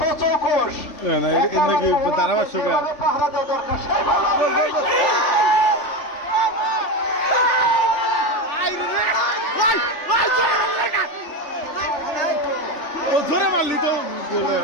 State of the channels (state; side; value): late; right; 3.4 ms